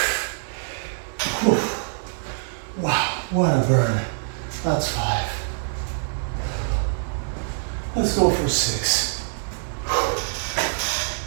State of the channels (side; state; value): left; silent; 62 dB below the other